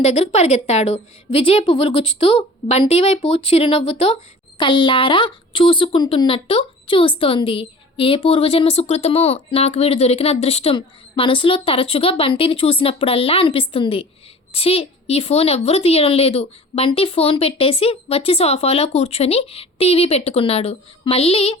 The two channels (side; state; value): both; normal; correlation 0.43